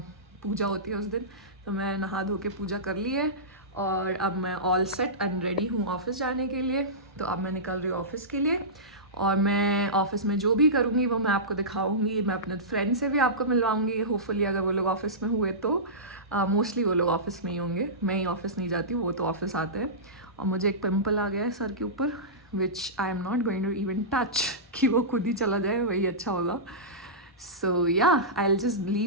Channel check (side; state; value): both; normal; correlation -0.18